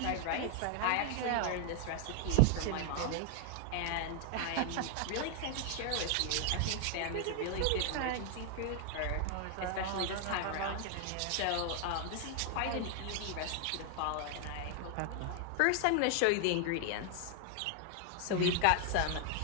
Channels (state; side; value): different; both; correlation 0.00